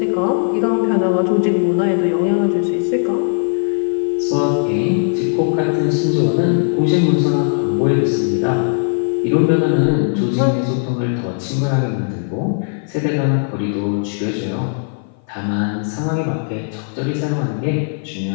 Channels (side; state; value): right; silent; 57 dB below the other